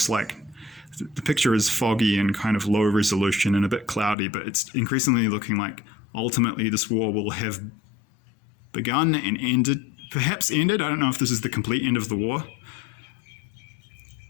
like the picture is foggy and kind of low resolution and a bit cloudy, but it's increasingly looking like ultimately this war will have begun and perhaps ended. I don't know if this is the complete end of the war.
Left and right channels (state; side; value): drops out; right; at 4.2 s